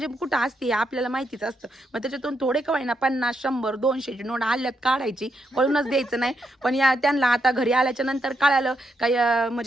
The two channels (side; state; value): both; normal; correlation 0.80